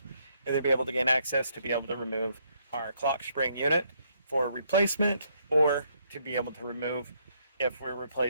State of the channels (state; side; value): inverted; both; correlation -0.72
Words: and then be able to gain access to be able to remove our clock spring unit for replacement, or to be able to remove if we're